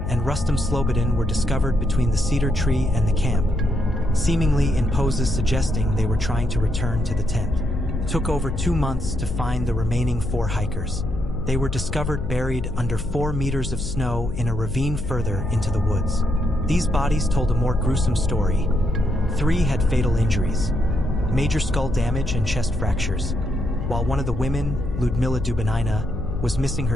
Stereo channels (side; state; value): left; noise; hum, 6 dB below the sound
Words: and Rustam Slobodin were discovered between the cedar tree and the camp, seemingly in poses suggesting they were trying to return to the tent. It took over 2 months to find the remaining 4 hikers. They were discovered buried under 4 meters of snow in a ravine further into the woods. These bodies told a more gruesome story. 3 had fatal injuries, major skull damage and chest fractures, while one of the women, Ludmila Dubinina, was missing